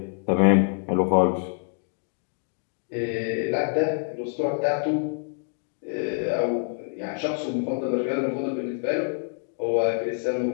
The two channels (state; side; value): silent; right; 61 dB below the other